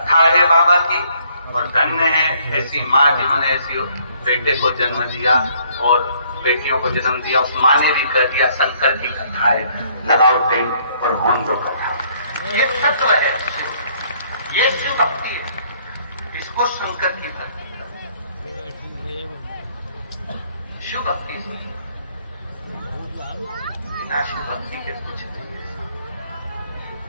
है बाबा की, और धन्य है ऐसी माँ जिन्होंने ऐसी बेटे को जन्म दिया और बेटियों को जन्म दिया। उस माँ ने भी कह दिया शंकर की कथा है, लगाओ टेंट और होन दो कथा। ये तत्व है, ये शिव भक्ति है, इसको शंकर की भक्ति शिव भक्ति। अविनाशी भक्ति के कुछ नहीं है।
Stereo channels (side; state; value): both; inverted; correlation -0.64